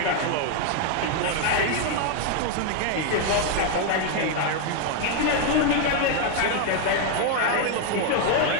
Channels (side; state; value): both; different; correlation 0.01